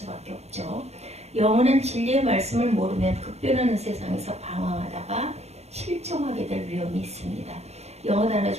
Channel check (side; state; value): left; late; 0.31 ms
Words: 없죠. 영원한 진리의 말씀을 모르면 급변하는 세상에서 방황하다가 실종하게 될 위험이 있습니다. 영어 단어